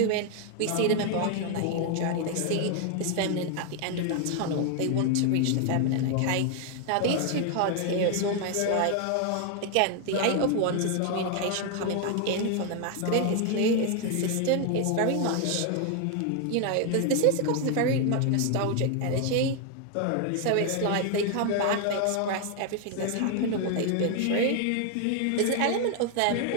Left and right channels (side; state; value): both; different; correlation 0.01